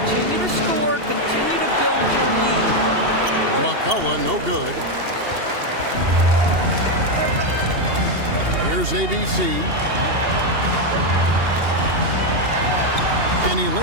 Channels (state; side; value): late; left; 2.8 ms